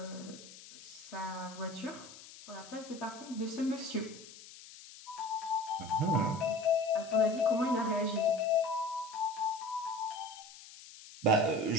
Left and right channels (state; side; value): noise; left; hiss, 17 dB below the sound